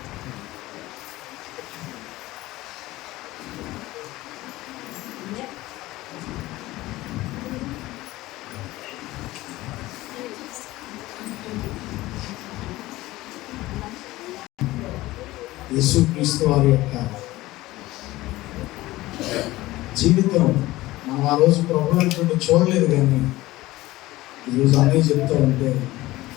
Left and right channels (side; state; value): right; quieter; 18.0 dB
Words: యేసుక్రీస్తు వారి యొక్క జీవితం మనం ఆ రోజు ప్రభు అనుకుంటూ చూడలేదు, కానీ ఈరోజు అన్నీ చెప్తూ ఉంటే